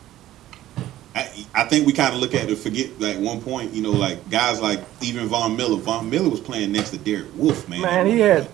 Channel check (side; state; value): left; quieter; 14.0 dB